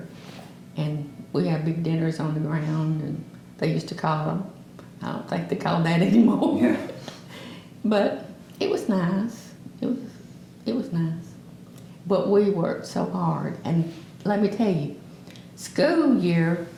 And we had big dinners on the ground, and they used to call them. I don't think they call that anymore. Yeah. But it was nice. It was nice. But we worked so hard. And let me tell you, school year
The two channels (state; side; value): identical; both; correlation 1.00